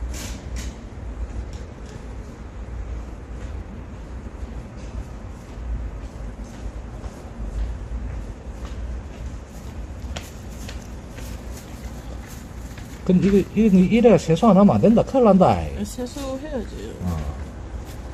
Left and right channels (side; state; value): both; identical; correlation 1.00